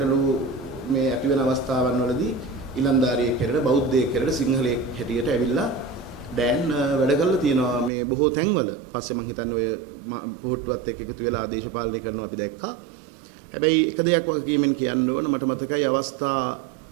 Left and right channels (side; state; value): left; drops out; at 7.9 s